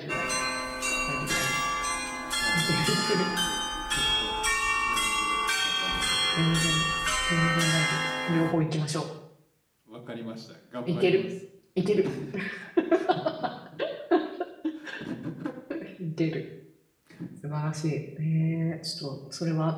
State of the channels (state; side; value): identical; both; correlation 1.00